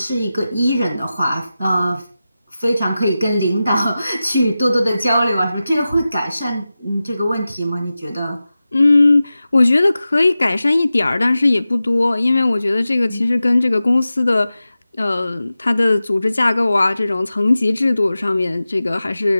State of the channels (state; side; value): inverted; both; correlation -0.95